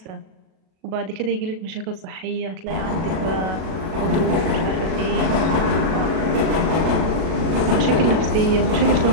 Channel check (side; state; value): left; late; 37 ms